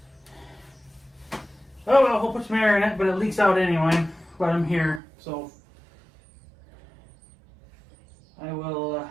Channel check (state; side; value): drops out; left; at 5.0 s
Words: oh well, we'll put some air in it, but it leaks out anyway. But I'm here, so I will